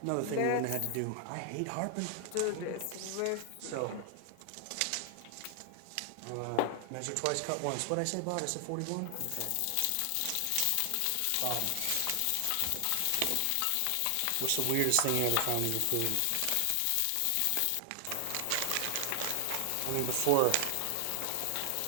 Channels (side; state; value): both; different; correlation 0.00